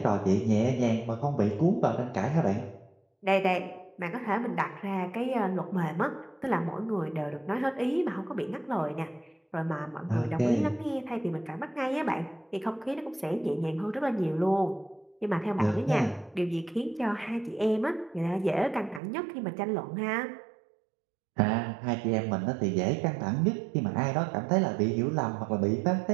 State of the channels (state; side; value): drops out; left; at 19.0 s